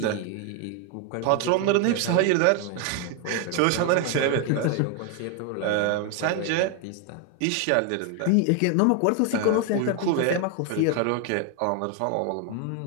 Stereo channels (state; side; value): different; both; correlation 0.01